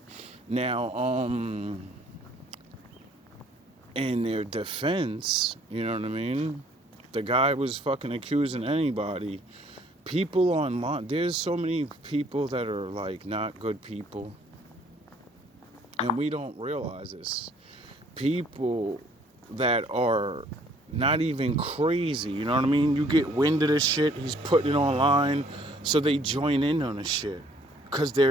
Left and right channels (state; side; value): normal; both; correlation 0.60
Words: Now, in their defense, you know what I mean? The guy was fucking accusing anybody. People online, there's so many people that are like not good people. And we don't realize this. People that are not even crazy, you know what I mean? You get wind of this shit, he's putting it online, so they join in on the shit. Because